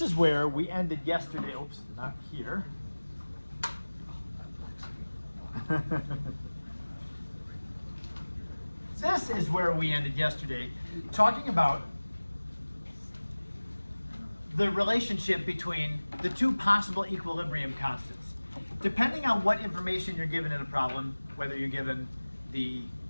is where we ended yesterday. Oops, not here. This is where we ended yesterday, talking about the relationship between the two possible equilibrium constants. Depending on what information you're given in a problem, whether you're given the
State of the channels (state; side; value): inverted; both; correlation -1.00